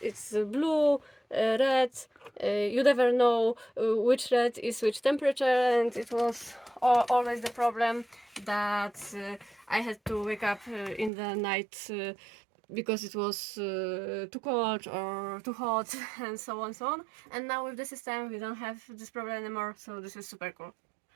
It's blue, red. You never know which red is which temperature, and it was always the problem that I had to wake up in the night because it was too cold or too hot and so on, so on. And now with the system we don't have this problem anymore, so this is super cool.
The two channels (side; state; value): left; drops out; at 11.1 s